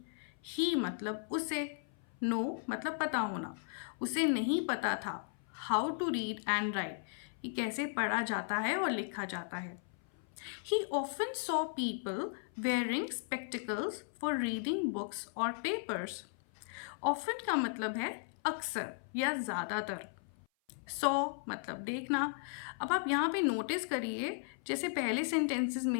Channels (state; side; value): silent; right; 54 dB below the other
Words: ही मतलब उसे, नो मतलब पता होना। उसे नहीं पता था how to read and write, कि कैसे पढ़ा जाता है और लिखा जाता है। He often saw people wearing spectacles for reading books or papers. Often का मतलब है अक्सर या ज़्यादातर। सॉ मतलब देखना। अब आप यहाँ पे नोटिस करिए, जैसे पहले सेंटेंसेस